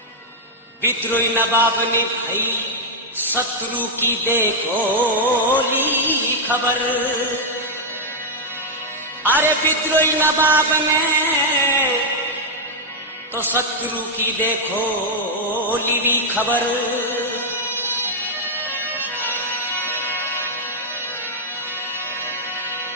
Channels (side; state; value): both; normal; correlation -0.03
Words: विद्रोही नवाब ने भाई शत्रु की देखो ली खबर। अरे विद्रोही नवाब ने तो शत्रु की देखो ली खबर।